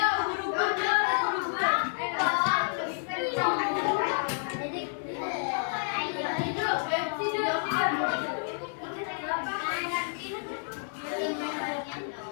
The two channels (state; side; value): silent; right; digital silence